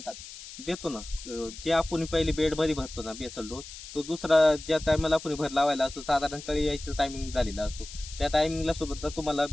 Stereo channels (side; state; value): left; noise; hiss, 13 dB below the sound